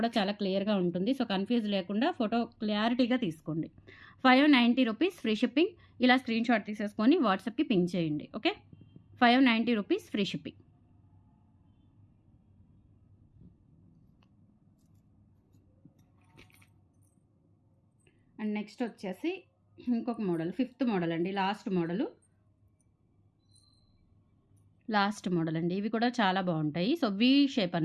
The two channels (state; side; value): identical; both; correlation 1.00